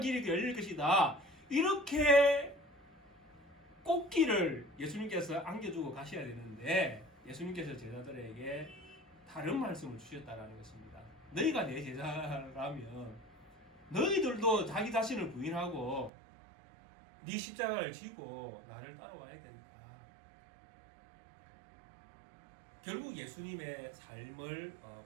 열릴 것이다, 이렇게 꽃길을 예수님께서 안겨주고 가셔야 되는데 예수님께서 제자들에게 다른 말씀을 주셨다는 것입니다. 너희가 내 제자라면 너희들도 자기 자신을 부인하고 네 십자가를 지고 나를 따라와야 된다. 결국 예수님의 삶을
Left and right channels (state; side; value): drops out; left; at 16.1 s